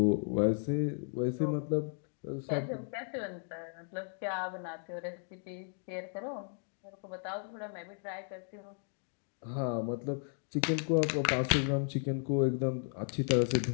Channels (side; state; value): right; silent; 54 dB below the other